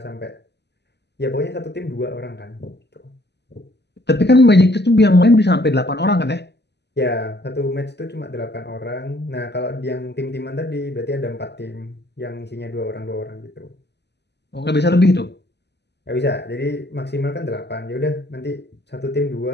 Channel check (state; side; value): late; right; 0.50 ms